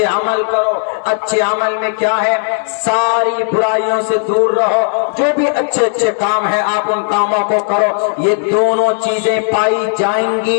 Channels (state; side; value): silent; right; digital silence